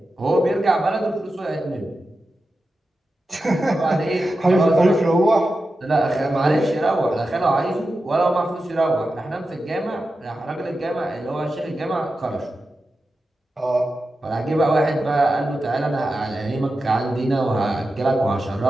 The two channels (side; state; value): both; normal; correlation 0.91